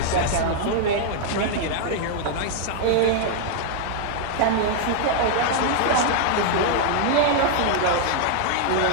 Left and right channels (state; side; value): different; both; correlation 0.00